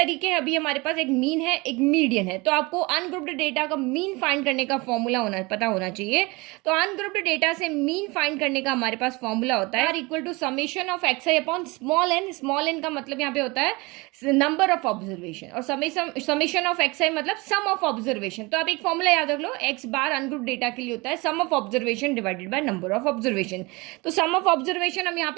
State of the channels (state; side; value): quieter; left; 24.9 dB